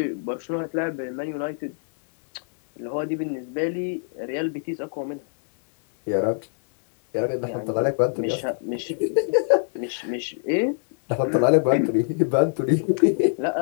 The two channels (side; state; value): right; silent; 62 dB below the other